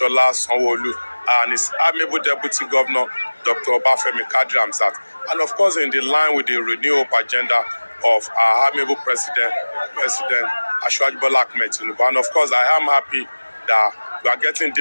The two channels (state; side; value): inverted; both; correlation -1.00